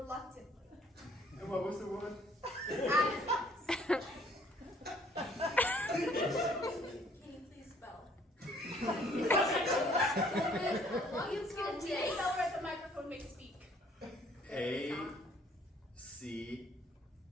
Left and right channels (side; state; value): both; normal; correlation 0.60